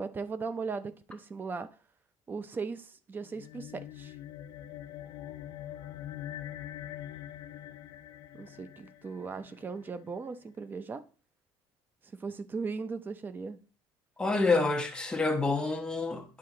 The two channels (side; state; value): both; normal; correlation 0.75